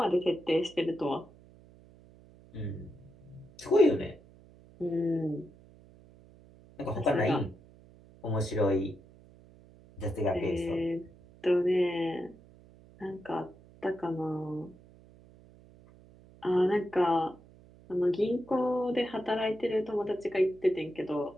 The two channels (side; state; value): right; noise; hum, 24 dB below the sound